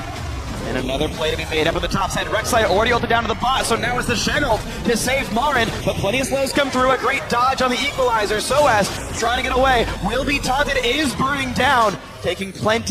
And another play to be made up at the top side. Rek'Sai already ulted down to the bot, so now it's the Shen ult to save Marin. But plenty of slows come through. A great dodge on the equalizer. Soaz trying to get away. Will be taunted, is burning down. Taking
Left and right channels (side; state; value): both; identical; correlation 1.00